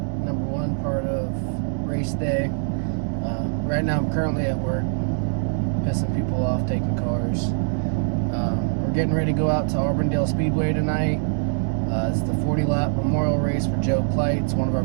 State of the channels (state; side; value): silent; left; digital silence